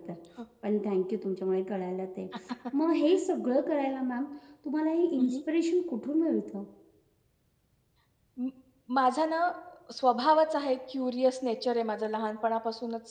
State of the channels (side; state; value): both; identical; correlation 1.00